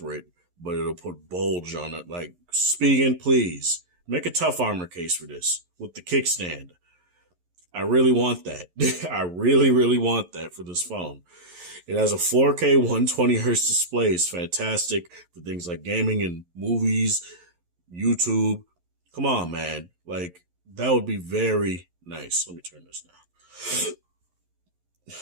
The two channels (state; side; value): late; left; 11 ms